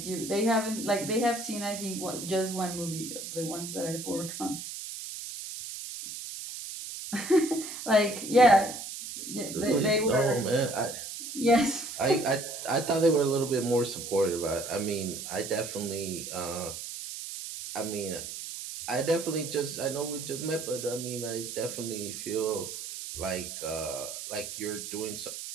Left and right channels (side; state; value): right; noise; hiss, 8 dB below the sound